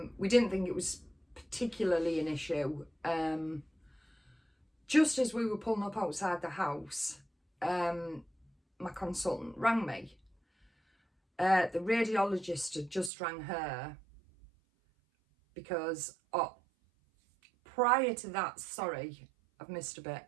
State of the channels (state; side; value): drops out; left; at 13.1 s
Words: We didn't think it was particularly an issue. Just as we were pulling up outside the house, my consultant rang me. The radiologist had just rang her because prior to that, sorry, I've missed a bit.